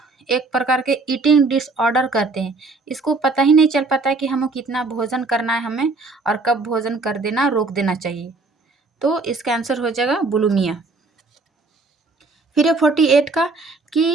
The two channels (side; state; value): left; quieter; 3.7 dB